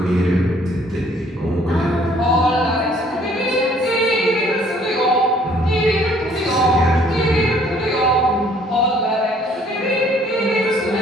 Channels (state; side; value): normal; both; correlation 0.60